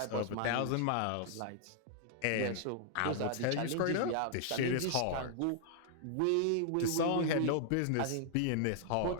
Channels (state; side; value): different; both; correlation 0.00